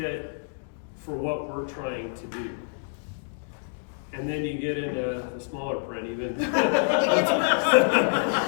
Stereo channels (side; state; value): right; silent; digital silence